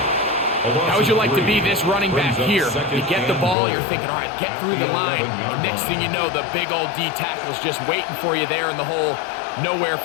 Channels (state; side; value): drops out; right; at 3.6 s